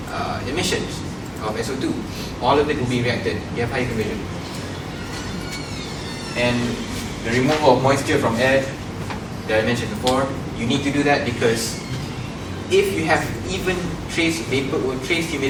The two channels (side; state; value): both; identical; correlation 1.00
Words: emissions of SO2. All of it will be reacted. You have higher conversion. And the removal of moisture from air that I mentioned before, you need to do that because if you have even trace vapor or trace